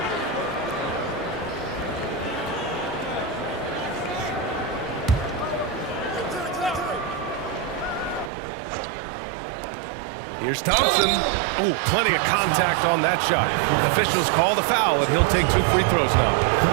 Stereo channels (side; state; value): left; drops out; at 8.3 s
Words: Here's Thompson. Ooh, plenty of contact on that shot. Officials call the foul, and he'll take 2 free throws now.